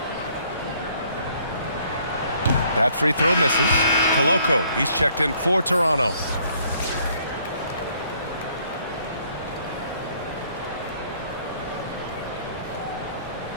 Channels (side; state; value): both; inverted; correlation -0.63